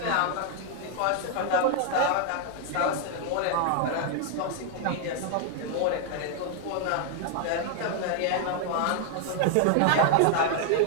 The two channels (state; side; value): different; both; correlation 0.00